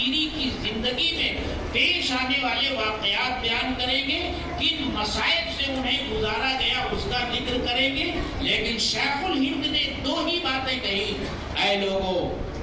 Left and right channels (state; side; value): identical; both; correlation 1.00